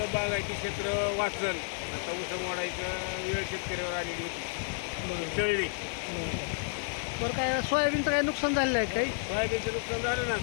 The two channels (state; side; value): silent; right; digital silence